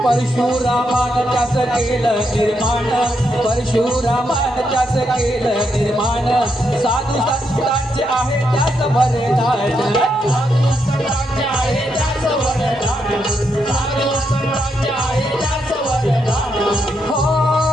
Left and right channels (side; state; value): both; normal; correlation 0.80